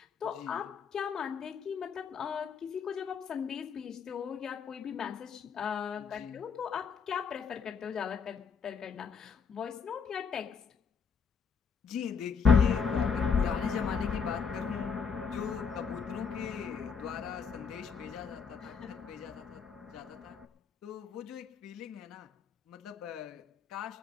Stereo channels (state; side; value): quieter; right; 6.1 dB